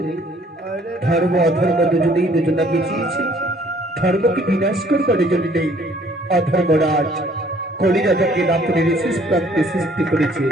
ধর্ম অধর্ম দুজনেই দুজনা পিছিয়েছে ধর্মকে বিনাশ করবার জন্য নেই অধর্মরাজ কলি রাজাকে রাত্রির শেষ প্রান্তে সৃষ্টি করেছে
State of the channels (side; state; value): both; normal; correlation 0.59